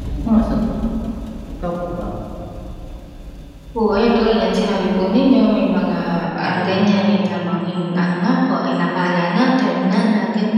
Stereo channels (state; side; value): identical; both; correlation 1.00